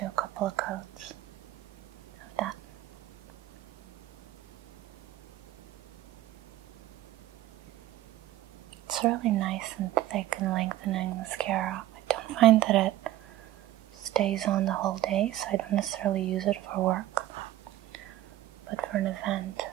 a couple of coats of that. It's really nice and thick and lengthening mascara. I don't find that it stays on the whole day, so I don't necessarily use it for work. But for an event,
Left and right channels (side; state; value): left; quieter; 14.6 dB